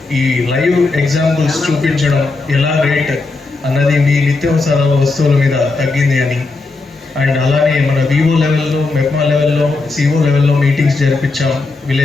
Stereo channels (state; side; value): quieter; right; 3.7 dB